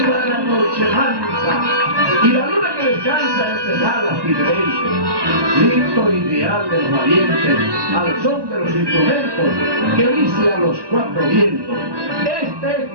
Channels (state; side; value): late; left; 1.2 ms